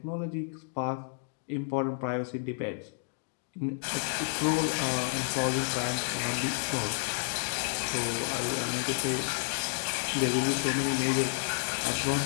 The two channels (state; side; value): silent; right; digital silence